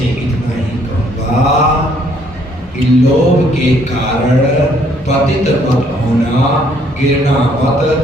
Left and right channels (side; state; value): both; normal; correlation 0.65